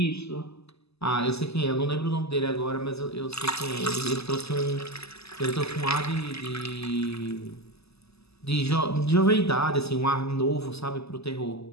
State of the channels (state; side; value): late; right; 0.79 ms